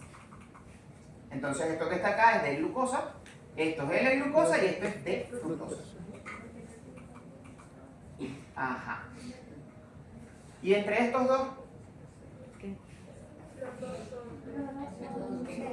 Entonces esto que está acá es de glucosa, esto es L-glucosa y esto es de fructosa. Ajá. ¿Y entre estos dos?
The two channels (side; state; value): both; identical; correlation 1.00